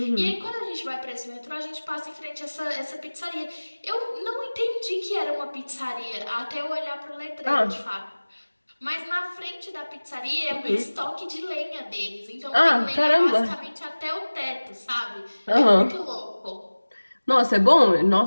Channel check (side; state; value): both; inverted; correlation -1.00